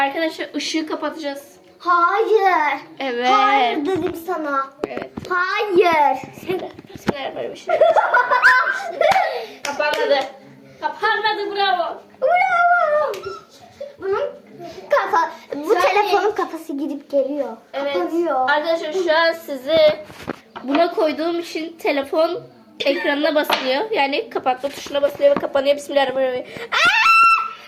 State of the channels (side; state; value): both; identical; correlation 1.00